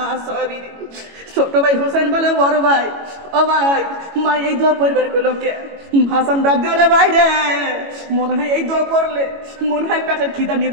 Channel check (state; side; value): late; left; 22 ms